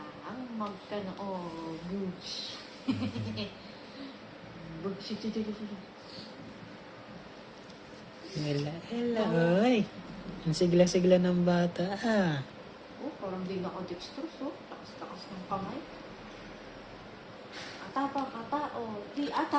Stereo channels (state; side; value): identical; both; correlation 1.00